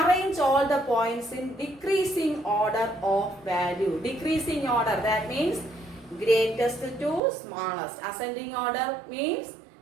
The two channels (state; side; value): drops out; left; at 7.2 s